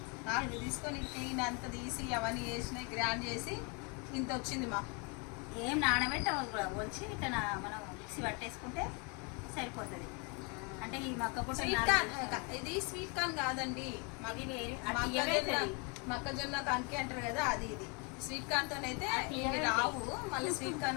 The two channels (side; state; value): right; quieter; 33.0 dB